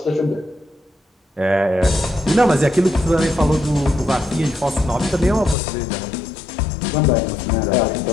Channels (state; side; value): drops out; right; at 5.6 s